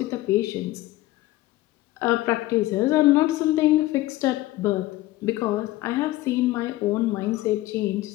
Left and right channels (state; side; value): quieter; right; 17.2 dB